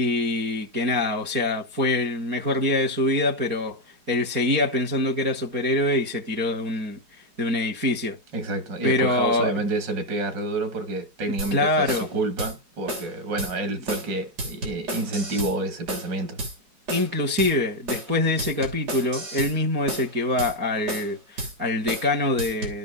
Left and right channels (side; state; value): left; late; 4.8 ms